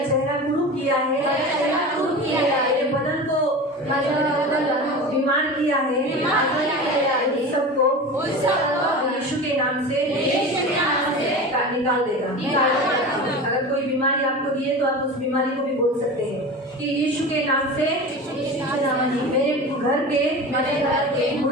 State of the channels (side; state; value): both; normal; correlation 0.31